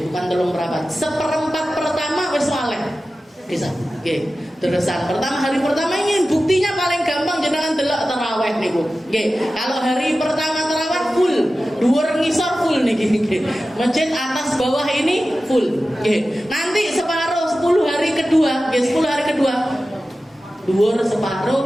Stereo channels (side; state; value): both; normal; correlation 0.94